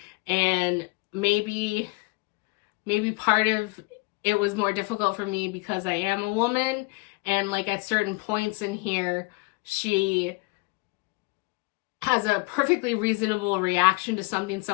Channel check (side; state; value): right; quieter; 26.9 dB